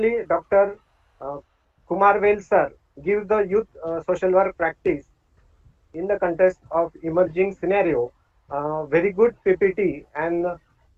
Dr. Kumar Vel sir gives the youth social work practice in the context of emerging scenario. Very good PPT and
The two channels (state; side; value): identical; both; correlation 1.00